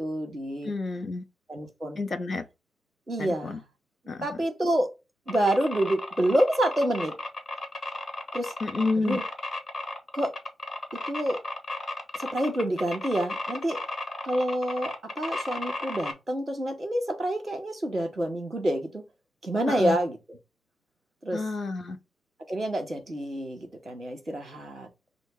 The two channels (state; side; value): normal; both; correlation 0.89